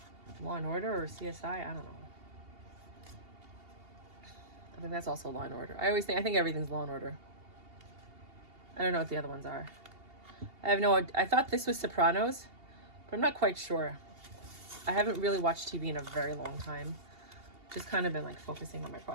Law and Order or CSI. I don't know. I think that's also Law and Order. I think everything's Law and Order. I don't know what the other ones are. I thought this was Sopranos, but I'm not quite sure. I haven't really watched TV in a very long time. Just kind of been like focusing on my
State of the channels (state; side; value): late; left; 2.8 ms